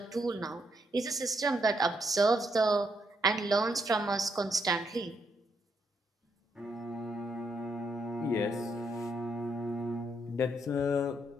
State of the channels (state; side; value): normal; both; correlation 0.76